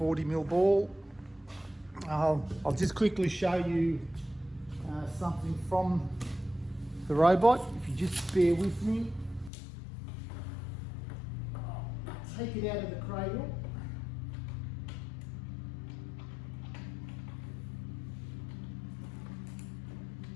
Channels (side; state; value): right; drops out; at 9.5 s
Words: ball. I'll just quickly show you something from the robot. If you just bear with me. I'll take it out of the cradle.